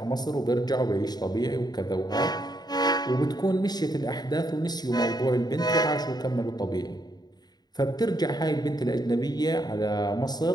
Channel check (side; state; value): right; late; 0.20 ms